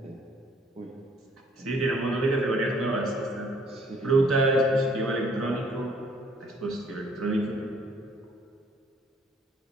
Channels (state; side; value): normal; both; correlation 0.62